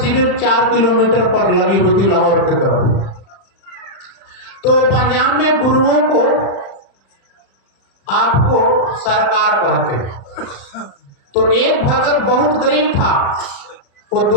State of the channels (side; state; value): right; late; 36 ms